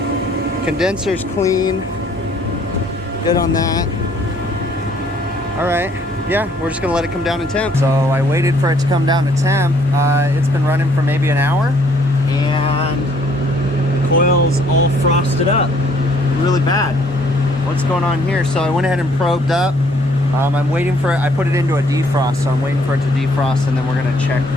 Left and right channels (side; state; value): both; normal; correlation 0.63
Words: Condenser's clean. Good on that. All right, yeah, we're just gonna let it come down in temp. So I waited for it to come down to temp. It's been running for maybe an hour and the coil's all frosted up really bad. What's going on here? So I went ahead and probed up. I'm waiting for it. I put it into a defrost, so I'm waiting for it to defrost, and then we're gonna check